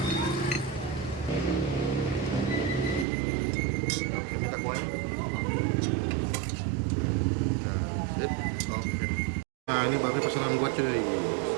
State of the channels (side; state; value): left; drops out; at 3.1 s